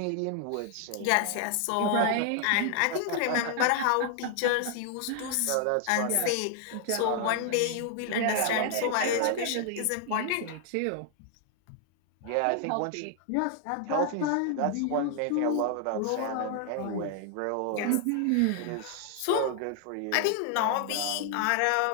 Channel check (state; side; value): different; both; correlation 0.00